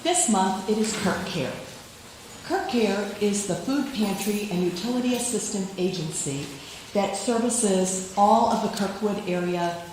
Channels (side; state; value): both; identical; correlation 1.00